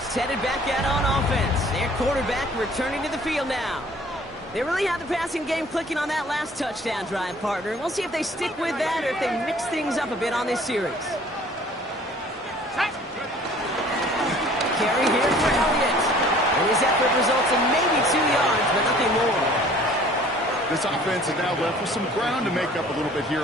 headed back out on offense. Their quarterback returning to the field now. They really had the passing game clicking on that last touchdown drive, partner. We'll see if they stick with that or if they mix things up a bit on this series. Carry here for Elliott. And his effort results in maybe 2 yards, but nothing more. This offense is now left with some ground to make up a little bit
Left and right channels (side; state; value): both; normal; correlation 0.52